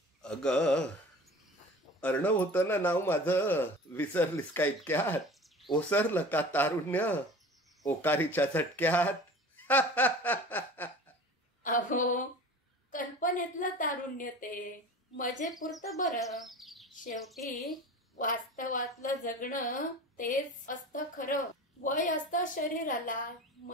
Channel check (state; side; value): normal; both; correlation 0.39